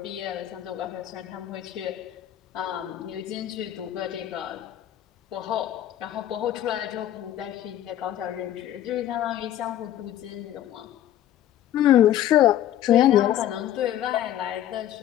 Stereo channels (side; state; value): right; quieter; 11.9 dB